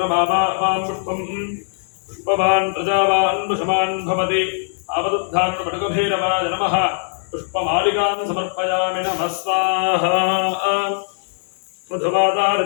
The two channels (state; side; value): silent; right; digital silence